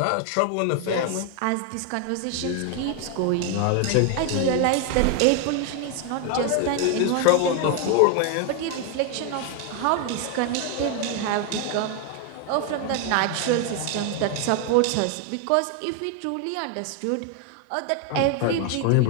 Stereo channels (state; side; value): different; both; correlation 0.01